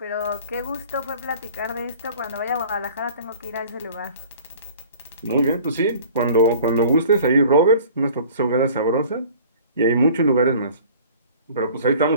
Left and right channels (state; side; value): inverted; both; correlation -0.47